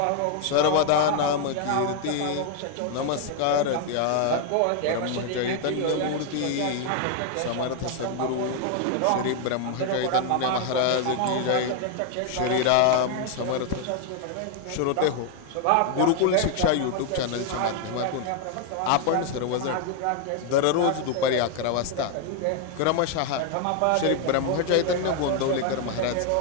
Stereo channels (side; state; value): both; different; correlation 0.00